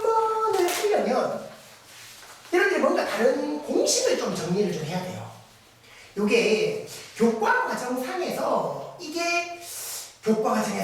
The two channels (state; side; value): identical; both; correlation 1.00